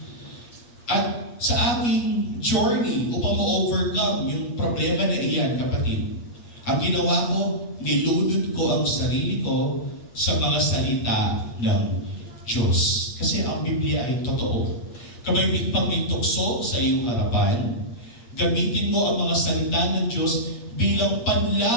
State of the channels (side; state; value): right; late; 8.6 ms